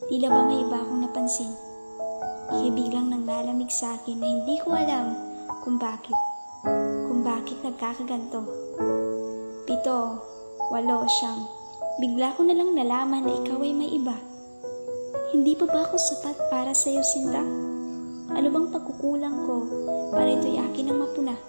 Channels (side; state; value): both; inverted; correlation -1.00